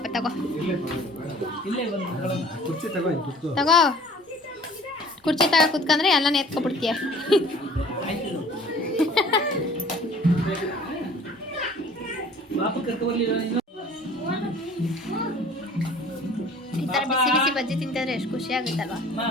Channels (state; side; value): normal; both; correlation 0.49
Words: ತಗೋ ಕುರ್ಚಿ ತಗೋ ಕುತ್ಕೊಂಡ್ರೆ ಎಲ್ಲ ಎತ್ಕೊಬಿಡ್ತೀಯ. ಈ ಥರ ಬಿಸಿ ಬಿಸಿ ಬಜ್ಜಿ ತಿಂತಿದ್ರೆ ಎಷ್ಟು ಖುಷಿ ಆಗುತ್ತಲ್ವಾ.